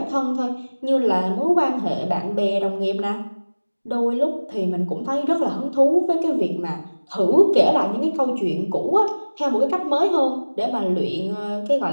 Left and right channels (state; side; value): inverted; both; correlation -1.00